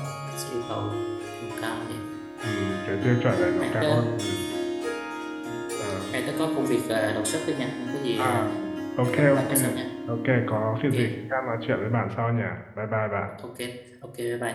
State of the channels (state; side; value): identical; both; correlation 1.00